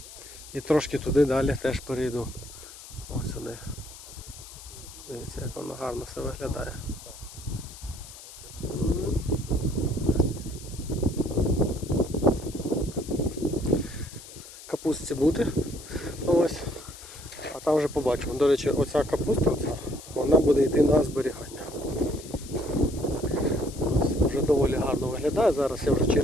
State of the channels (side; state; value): left; noise; hiss, 16 dB below the sound